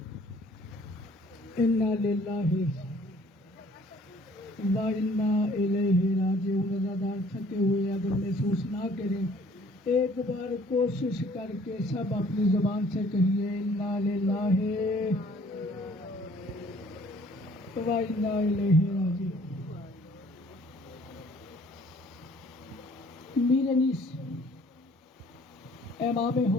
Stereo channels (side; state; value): both; normal; correlation 0.57